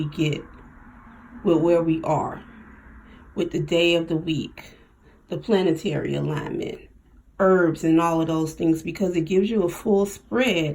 get with where we are, with the day of the week, the planetary alignment, herbs and all of those things, because it gives you a full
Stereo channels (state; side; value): identical; both; correlation 1.00